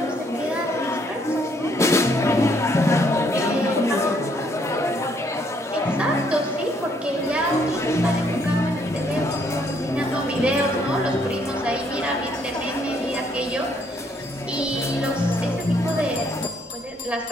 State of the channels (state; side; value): normal; both; correlation 0.68